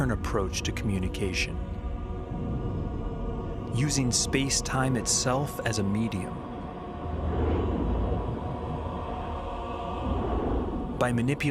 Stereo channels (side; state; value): both; identical; correlation 1.00